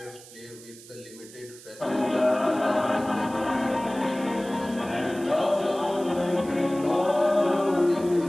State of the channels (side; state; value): right; noise; hiss, 19 dB below the sound